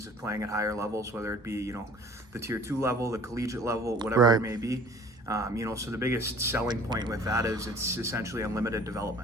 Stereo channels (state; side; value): normal; both; correlation 0.50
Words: of playing at higher levels, whether it be the tier 2 level, the collegiate level, whatever right. it may be. So the biggest selling point with that is it's essentially unlimited